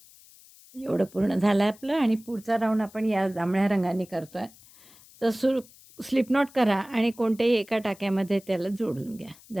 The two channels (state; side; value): noise; left; hiss, 24 dB below the sound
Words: एवढं पूर्ण झालं आपलं, आणि पुढचा राऊंड आपण या जांभळ्या रंगाने करतो आहे. तर स्लिप नॉट करा आणि कोणत्याही एका टाक्यामध्ये त्याला जोडून घ्या